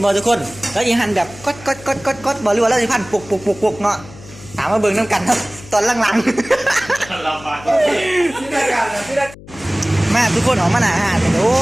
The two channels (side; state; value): left; noise; hum, 19 dB below the sound